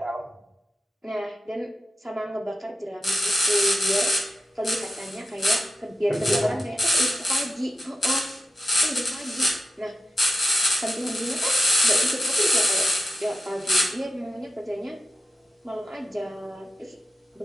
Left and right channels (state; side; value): normal; both; correlation 0.92